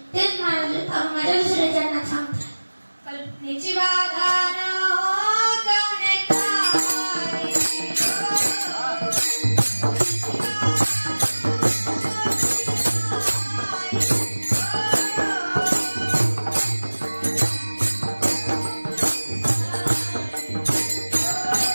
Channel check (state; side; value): inverted; both; correlation -1.00